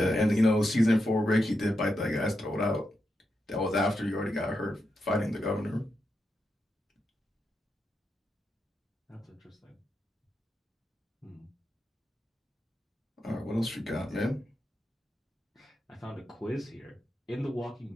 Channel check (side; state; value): both; normal; correlation 0.86